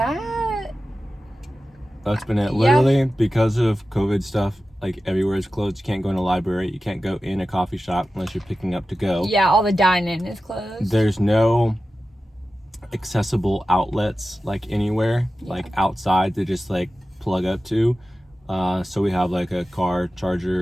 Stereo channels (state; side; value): normal; both; correlation 0.94